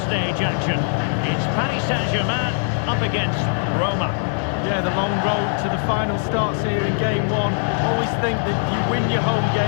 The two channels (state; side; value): silent; right; 58 dB below the other